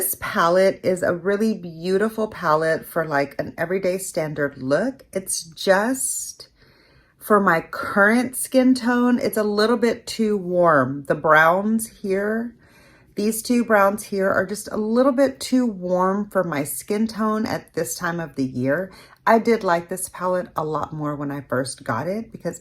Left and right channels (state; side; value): identical; both; correlation 1.00